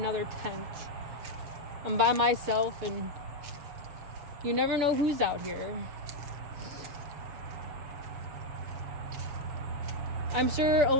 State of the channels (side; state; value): left; late; 6.9 ms